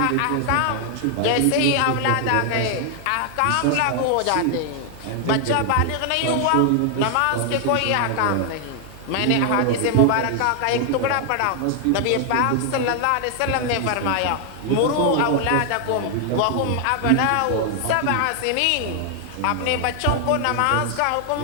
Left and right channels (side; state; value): both; different; correlation 0.00